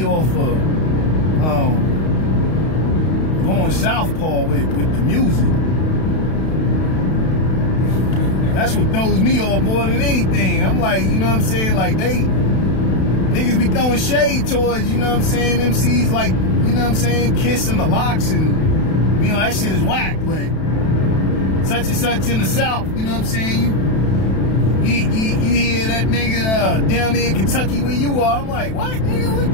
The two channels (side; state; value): right; late; 32 ms